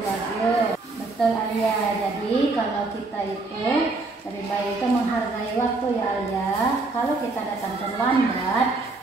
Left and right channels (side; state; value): left; quieter; 3.5 dB